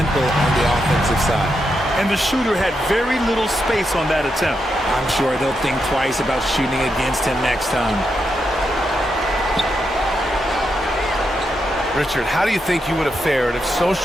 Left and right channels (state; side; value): normal; both; correlation 0.84